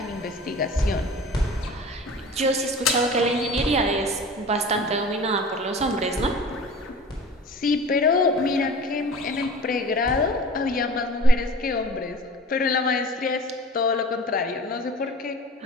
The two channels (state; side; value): normal; both; correlation 0.40